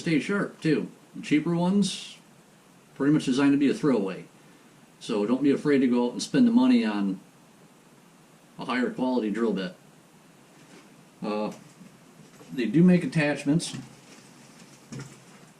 sharp too. The cheaper ones, pretty much designed to be a throwaway. So don't be afraid to go out and spend the money on a higher quality drill bit. They do make attachments.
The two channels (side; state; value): both; identical; correlation 1.00